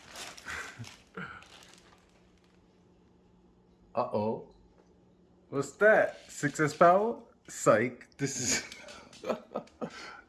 Uh-oh. What's that? 6S power? Psych. This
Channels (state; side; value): identical; both; correlation 1.00